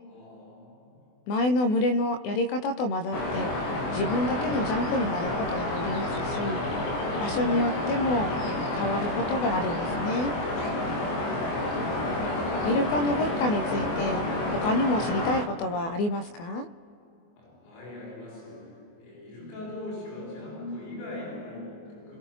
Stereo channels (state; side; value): late; right; 24 ms